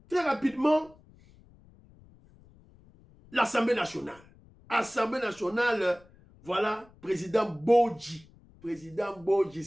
très rapidement, l'Assemblée nationale. Assemblée nationale, voilà, président Bodji. Président Bodji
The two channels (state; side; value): noise; left; rumble, 26 dB below the sound